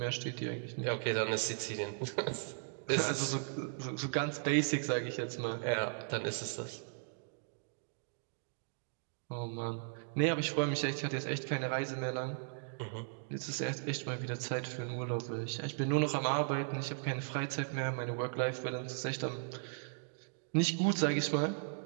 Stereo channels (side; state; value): left; silent; digital silence